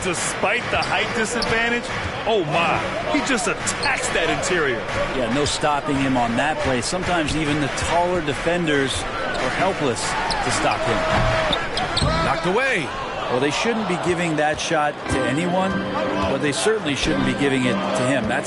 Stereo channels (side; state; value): both; identical; correlation 1.00